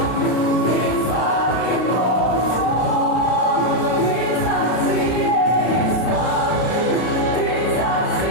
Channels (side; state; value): right; late; 33 ms